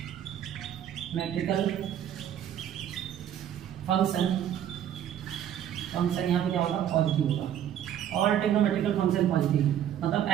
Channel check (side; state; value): left; quieter; 10.3 dB